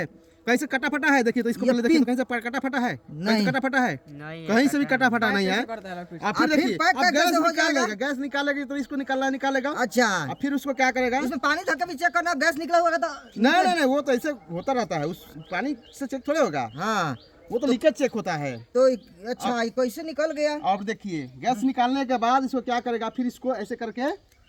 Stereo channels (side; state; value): both; identical; correlation 1.00